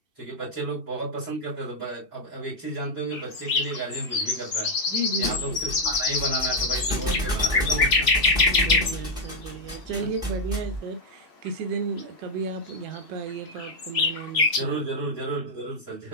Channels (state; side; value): late; left; 2.7 ms